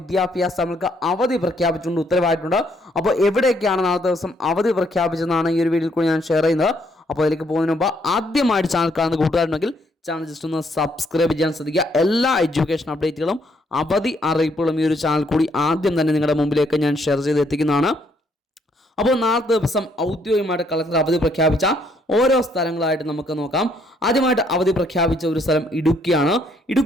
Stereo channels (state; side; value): normal; both; correlation 0.70